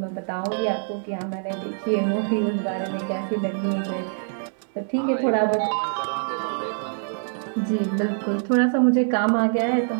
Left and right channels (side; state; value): left; silent; 62 dB below the other